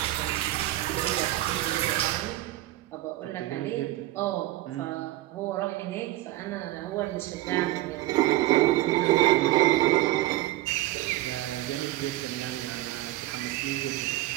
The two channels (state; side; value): quieter; left; 16.6 dB